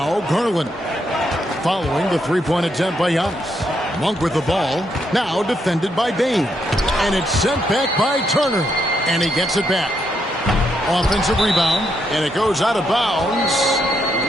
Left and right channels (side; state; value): both; normal; correlation 0.78